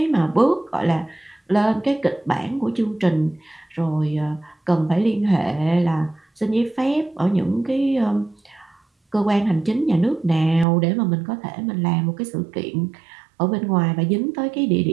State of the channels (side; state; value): left; drops out; at 10.7 s